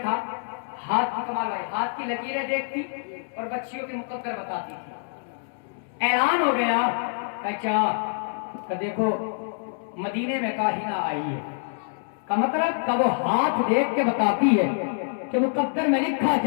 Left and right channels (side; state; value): right; silent; 61 dB below the other